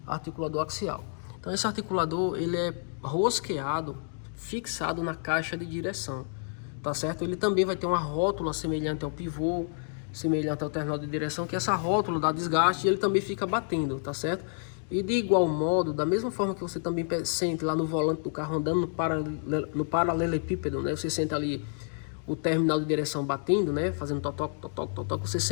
Articulador axial. Então esse articulador, ele é rosqueado, fixado na caixa de direção, tá certo? Ele também vai ter uma rótula semelhante ao pivô, semelhante ao terminal de direção, que essa rótula dá desgaste e ele também fica batendo, tá certo? E de igual modo, da mesma forma que você também sente lá no volante do carro andando no paralelepípedo, né? Você sente ali o terminal de direção batendo, né? Fazendo totoc, totoc, totoc, você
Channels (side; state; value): right; silent; digital silence